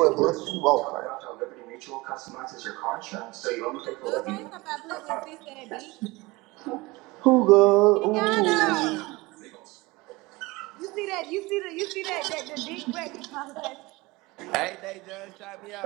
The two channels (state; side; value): quieter; left; 22.7 dB